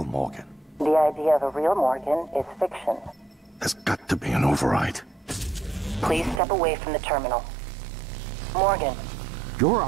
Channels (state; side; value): drops out; left; at 6.4 s